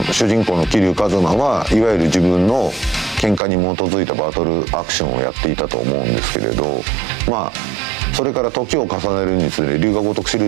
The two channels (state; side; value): drops out; left; at 3.4 s